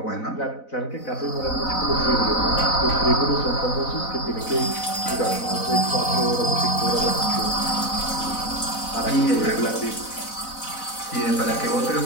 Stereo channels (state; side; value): late; right; 4.0 ms